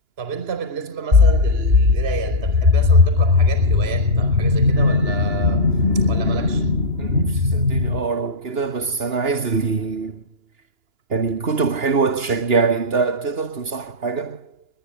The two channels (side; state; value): left; late; 2.9 ms